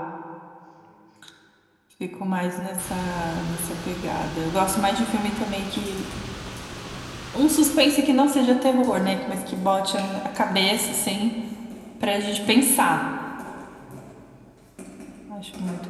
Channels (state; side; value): identical; both; correlation 1.00